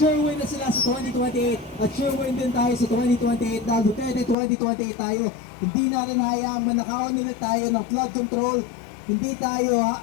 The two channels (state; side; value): drops out; right; at 4.4 s